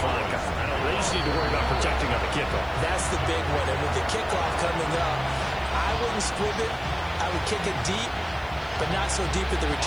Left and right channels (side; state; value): right; noise; hiss, 29 dB below the sound